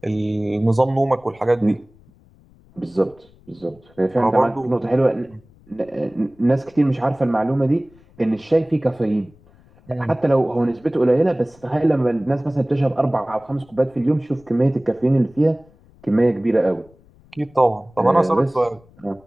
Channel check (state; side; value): noise; left; rumble, 28 dB below the sound